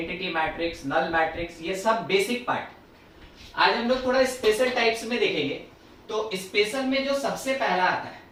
matrix, null matrix, ये सब बेसिक पार्ट। आज हम लोग थोड़ा स्पेशल टाइप्स में देखेंगे। तो स्पेशल में जो सबसे पहला आता है,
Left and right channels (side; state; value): both; identical; correlation 1.00